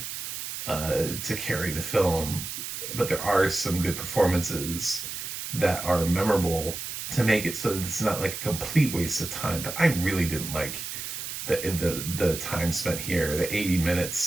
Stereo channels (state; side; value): noise; right; hiss, 6 dB below the sound